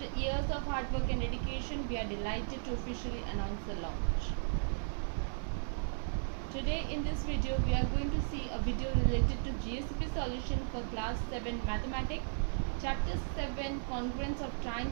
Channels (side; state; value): left; silent; 54 dB below the other